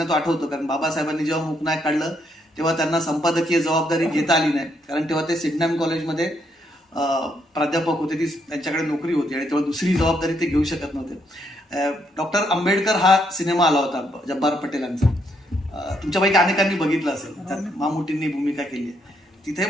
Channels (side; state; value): both; normal; correlation 0.75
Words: तो आठवतो, कारण बाबासाहेबांनी जेव्हा मूकनायक काढलं तेव्हा त्यांना संपादकीय जबाबदारी घेता आली नाही, कारण तेव्हा ते सिडनॅम कॉलेजमध्ये प्राध्यापक होते, ती त्यांच्याकडे नोकरी होती आणि तेव्हा दुसरी जबाबदारी ते घेऊ शकत नव्हते. डॉक्टर आंबेडकर हा सिनेमा आला होता जब्बार पटेलांचा, तुमच्यापैकी अनेकांनी बघितलं असेल, त्यात मामुटींनी भूमिका केली आहे. तिथे